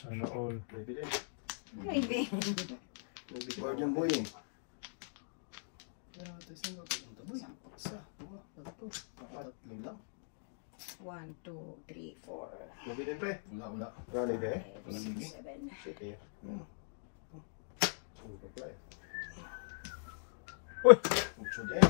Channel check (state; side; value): silent; right; digital silence